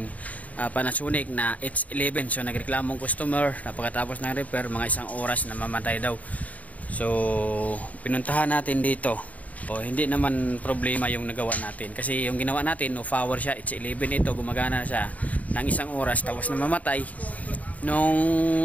Panasonic na H11. So nagreklamong customer, napakatapos ng repair, mga isang oras na mamatay daw. So pinuntahan natin dito. Hindi naman problema yung nagawa natin, kasi yung ginawa natin no power siya, H11 ito, gumagana siya ng isang oras tapos na mamatay.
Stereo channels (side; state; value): right; late; 0.072 ms